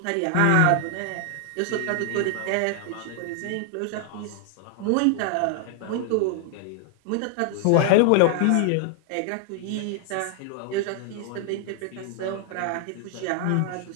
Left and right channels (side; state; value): both; different; correlation 0.00